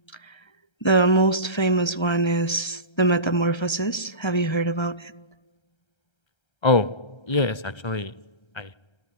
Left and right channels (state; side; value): late; right; 1.3 ms